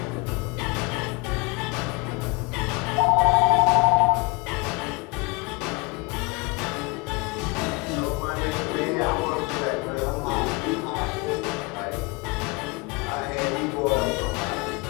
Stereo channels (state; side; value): quieter; right; 28.2 dB